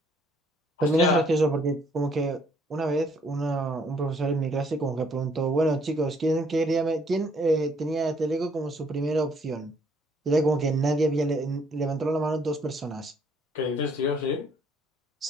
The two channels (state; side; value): normal; both; correlation 0.64